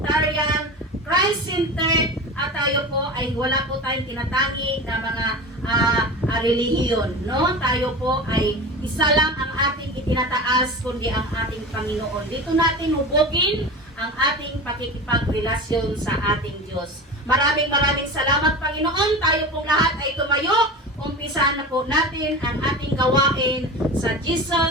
Christ-centered, at tayo po ay wala po tayong tinatangi na mga relihiyon, no? Tayo po ay isa lang ang ating itinataas, kundi ang ating Panginoon. Dito natin hubogin ang ating pakikipagrelasyon sa ating Diyos. Maraming salamat, Panginoon. Tayo pong lahat ay tumayo. Umpisahan na po natin ang ating gawain sa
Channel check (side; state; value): both; normal; correlation 0.30